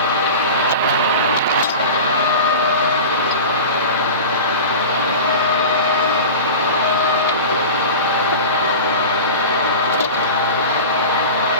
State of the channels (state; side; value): inverted; both; correlation -0.31